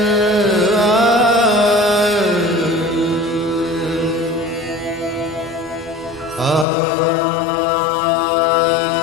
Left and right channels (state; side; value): drops out; right; at 6.7 s